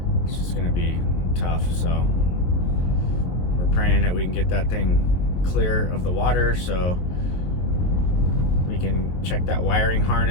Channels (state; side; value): late; right; 22 ms